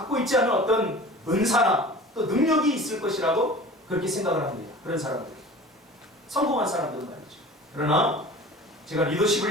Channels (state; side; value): normal; both; correlation 0.40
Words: 있지 않은 어떤 은사나 또 능력이 있을 것이라고 그렇게 생각을 합니다. 그런 사람들, 성공한 사람들은 말이죠. 그러나 제가 리더십을